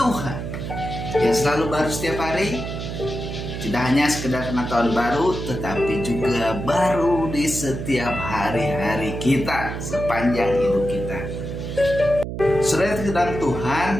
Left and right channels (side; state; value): right; noise; hum, 6 dB below the sound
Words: yang selalu baru setiap hari. Tidak hanya sekedar pengetahuan baru, tetapi juga baru di setiap hari-hari kita sepanjang hidup kita. Saudara, kedalam